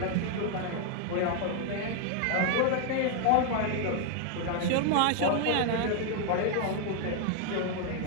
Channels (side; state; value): both; different; correlation 0.00